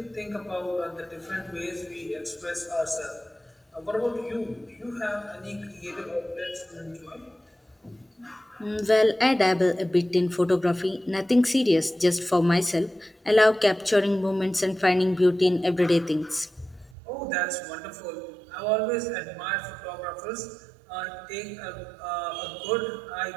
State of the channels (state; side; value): drops out; left; at 16.9 s